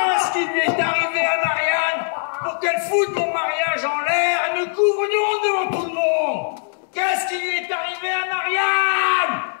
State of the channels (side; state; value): right; silent; digital silence